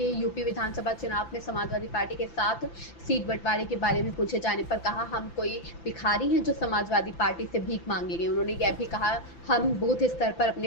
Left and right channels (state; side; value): late; right; 5.9 ms